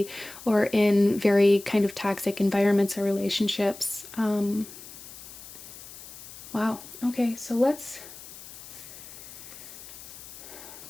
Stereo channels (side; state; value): left; noise; hiss, 15 dB below the sound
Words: or in very kind of toxic environments or relationships. Wow. Okay, so let's